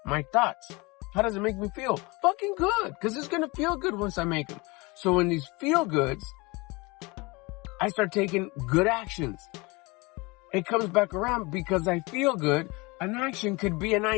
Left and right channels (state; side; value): quieter; right; 25.5 dB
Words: my thoughts. How does it make me feel? Fucking good. Because it's going to feel good once I make them. So when these feel goods, I start taking good actions. It comes back around because I feel good. An action could be an